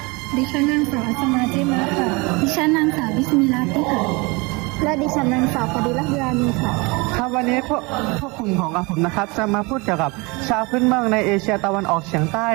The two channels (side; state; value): left; quieter; 26.7 dB